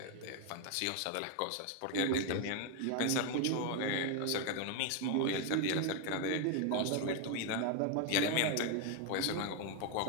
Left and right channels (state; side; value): different; both; correlation 0.01